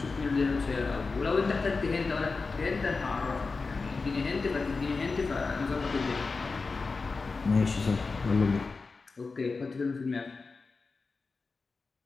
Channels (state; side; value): quieter; right; 4.2 dB